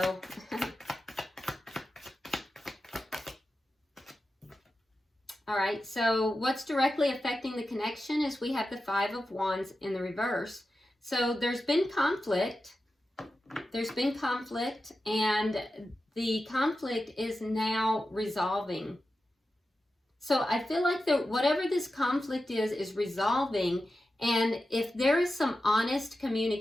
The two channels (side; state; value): both; normal; correlation 0.92